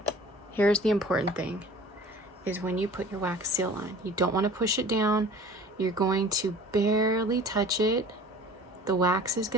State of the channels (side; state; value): both; normal; correlation 0.46